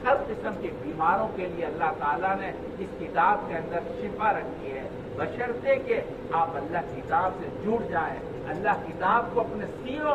हर किस्म के बीमारों के लिए अल्लाह ताला ने इस किताब के अंदर शिफा रखी है, बशर्ते के आप अल्लाह किताब से जुड़ जाएं, अल्लाह किताब को अपने सीनों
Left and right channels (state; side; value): identical; both; correlation 1.00